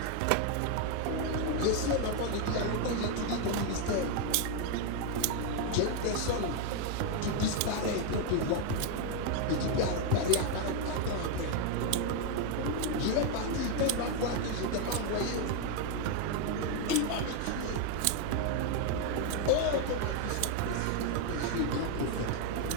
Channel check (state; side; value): different; both; correlation 0.01